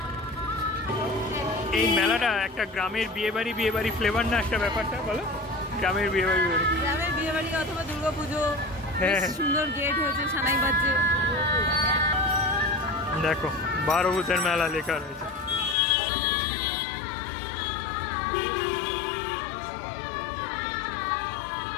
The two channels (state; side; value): drops out; right; at 15.8 s